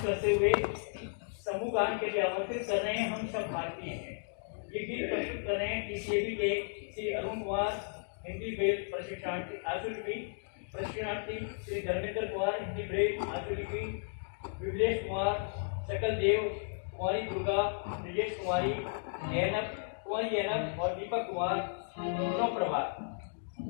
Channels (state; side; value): silent; right; digital silence